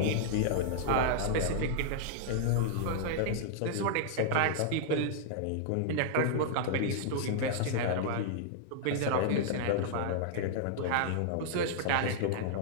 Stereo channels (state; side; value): different; both; correlation -0.01